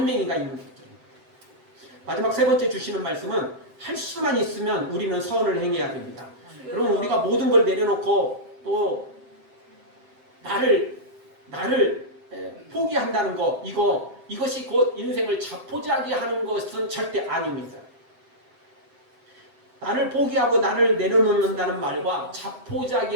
있는 것들입니다. 마지막 세 번째 주시는 말씀은 할 수만 있으면 우리는 선을 행해야 됩니다. 여러분, 우리가 모든 걸 내려놓고 또 나를 포기한다는 거, 이것이 곧 인생을 자포자기 하는 것은 절대 아닙니다. 나를 포기하고 나를 내려놓는다는 말과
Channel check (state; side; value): late; left; 7.7 ms